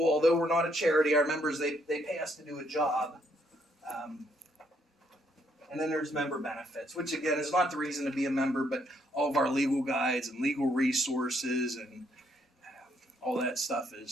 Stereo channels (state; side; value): normal; both; correlation 0.71